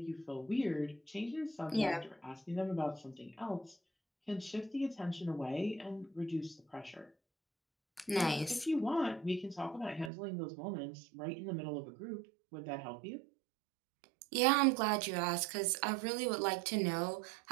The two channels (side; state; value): left; drops out; at 10.1 s